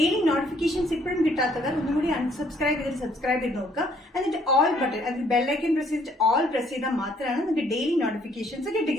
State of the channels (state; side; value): normal; both; correlation 0.64